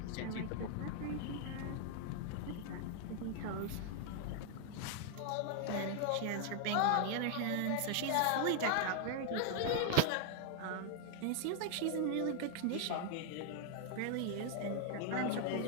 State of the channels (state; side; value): different; both; correlation 0.00